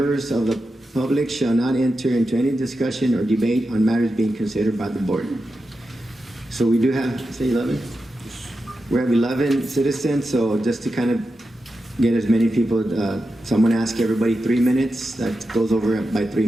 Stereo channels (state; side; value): normal; both; correlation 0.90